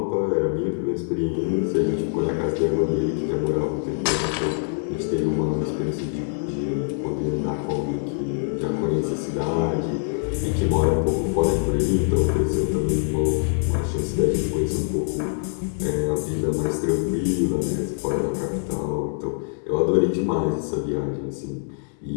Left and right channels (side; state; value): right; silent; digital silence